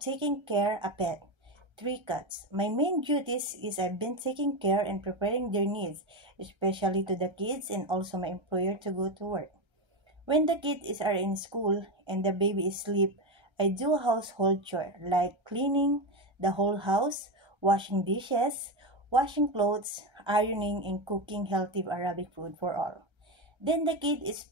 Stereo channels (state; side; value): late; left; 1.3 ms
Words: care a pet, 3 cats. My main duties is I've been taking care and preparing their needs, especially to the kids and also my employer to go to work. When the kids are in school and the baby is asleep, I do household chore like cleaning the whole house, washing dishes, washing clothes, ironing, and cooking healthy Arabic food for all. Then the kid is